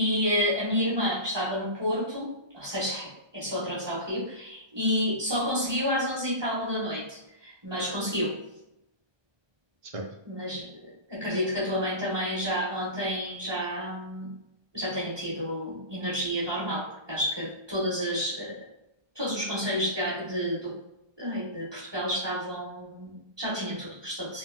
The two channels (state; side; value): late; left; 1.2 ms